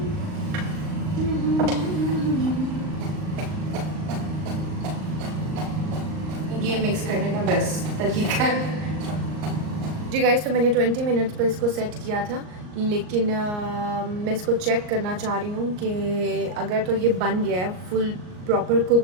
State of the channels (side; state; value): left; late; 38 ms